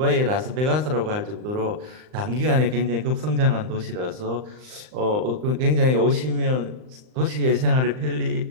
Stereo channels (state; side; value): late; left; 39 ms